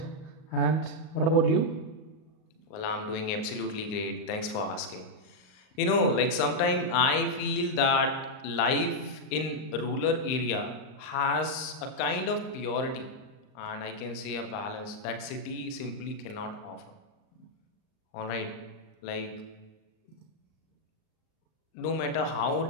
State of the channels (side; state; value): right; late; 38 ms